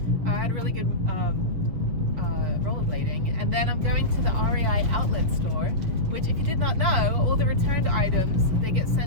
I had a really good rollerblading, and then I'm going to the REI outlet store, which, if you did not know, all the returned items, they get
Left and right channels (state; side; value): late; left; 6.8 ms